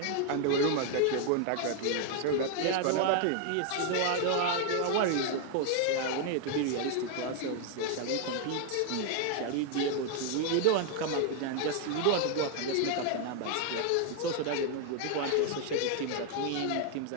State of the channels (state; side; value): different; both; correlation 0.00